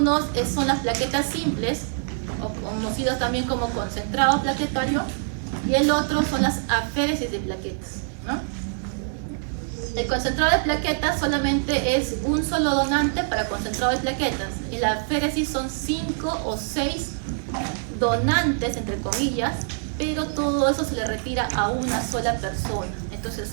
son las plaquetas simples, o conocidos también como concentrado plaquetario, y el otro son las aféresis de plaquetas, ¿no? El concentrado de plaquetas solamente es un solo donante para concentrado de plaquetas. En la aféresis son 5 o 6 donantes, entre comillas, pero todo eso se le retira a una sola persona. Entonces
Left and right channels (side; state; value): left; silent; digital silence